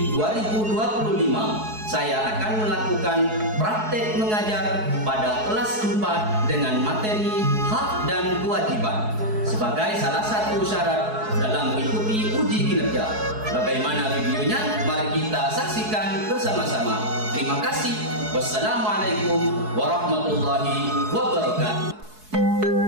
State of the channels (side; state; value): left; late; 4.7 ms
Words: 2025, saya akan melakukan praktek mengajar pada kelas 4 dengan materi hak dan kewajiban sebagai salah satu syarat dalam mengikuti uji kinerja. Bagaimana videonya? Mari kita saksikan bersama-sama. Terima kasih. Wassalamualaikum warahmatullahi wabarakatuh.